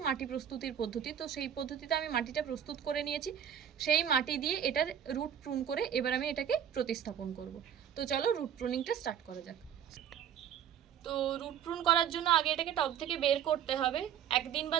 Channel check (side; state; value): left; quieter; 9.1 dB